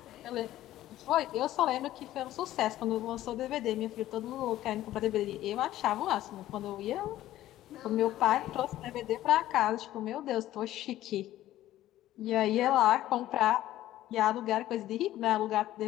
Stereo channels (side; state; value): right; quieter; 14.1 dB